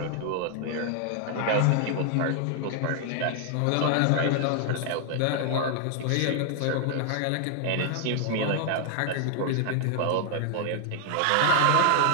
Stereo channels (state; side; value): different; both; correlation 0.00